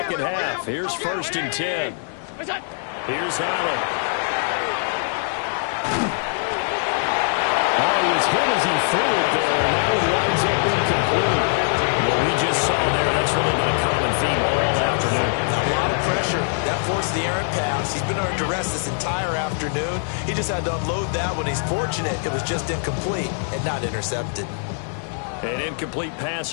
half. Here's 1st and 10. Here's Allen. Oh, he was hit as he threw it there, and that one winds up incomplete. What we just saw there, that's really been a common theme all afternoon. A lot of pressure. That forced the errant pass. He's been under duress this entire afternoon. He just had to unload that one. He's fortunate it was just incomplete and not intercepted. An incomplete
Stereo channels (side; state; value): right; silent; digital silence